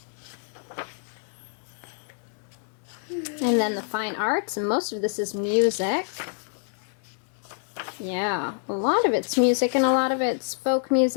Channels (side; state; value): right; silent; digital silence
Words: And then the fine arts, and most of this is music. Yeah, a lot of it's music, and a lot of it's folk